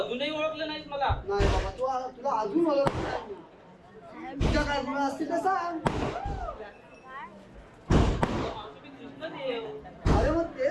ओळखलं नाहीस मला. नाही बाबा तुला अजून मला तुझ्या काय गुण असतील तर सांग मावशी, मी कृष्णदेव. अरे मग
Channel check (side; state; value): both; identical; correlation 1.00